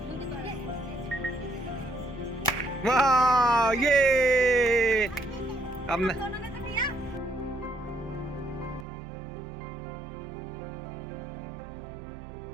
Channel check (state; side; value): drops out; left; at 8.8 s